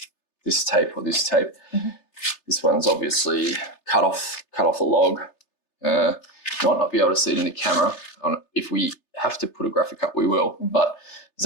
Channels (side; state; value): right; late; 3.3 ms